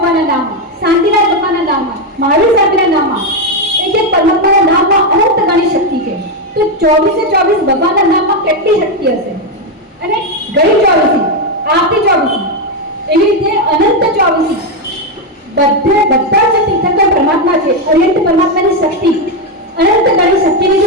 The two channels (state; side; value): normal; both; correlation 0.05